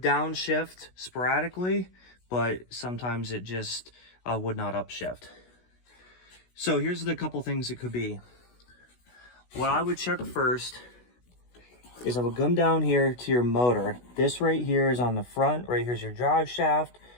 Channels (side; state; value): right; late; 16 ms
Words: downshift sporadically, but sometimes it just would not upshift. So here's the couple things it could be. What I would check first is I would come down here to your motor. This right here is on the front. Right here's your drive shaft